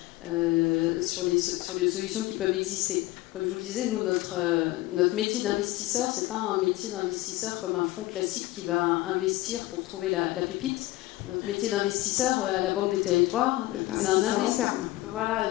sur les solutions qui peuvent exister. Comme je vous le disais, nous, notre métier d'investisseur, c'est pas un métier d'investisseur comme un fonds classique qui va investir pour trouver la pépite. Notre métier d'investisseur à la Banque des Territoires, c'est un investisseur long terme. Voilà,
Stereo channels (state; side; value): quieter; right; 18.0 dB